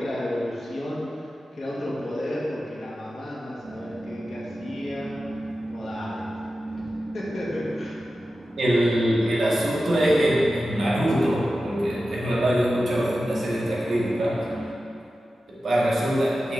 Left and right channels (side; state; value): both; normal; correlation 0.93